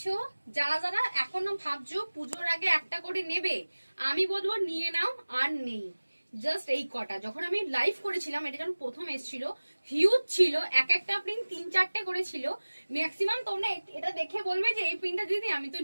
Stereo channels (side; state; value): both; inverted; correlation -1.00